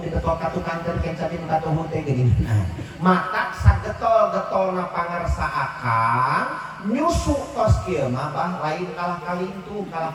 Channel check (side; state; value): both; identical; correlation 1.00